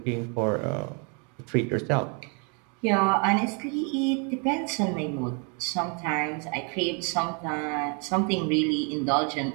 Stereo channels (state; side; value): quieter; left; 36.3 dB